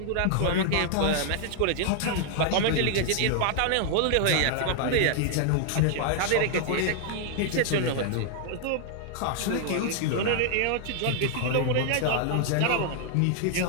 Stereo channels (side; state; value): both; different; correlation 0.00